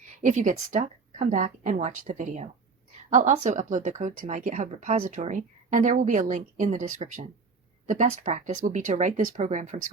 If you get stuck, come back and watch the video. I'll also upload the code to my GitHub repository, and there will be a link in the description. The best practice will be to write this program from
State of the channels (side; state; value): left; quieter; 4.6 dB